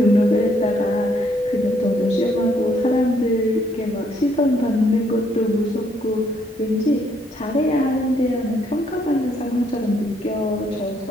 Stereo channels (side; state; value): both; normal; correlation 0.70